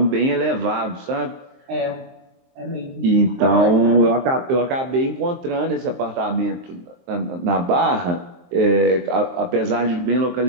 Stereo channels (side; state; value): left; late; 23 ms